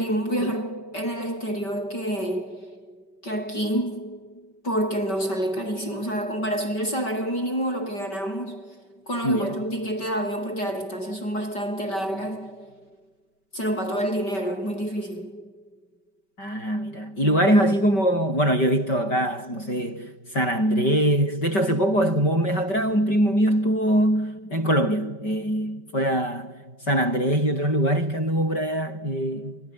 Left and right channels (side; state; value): right; late; 5.2 ms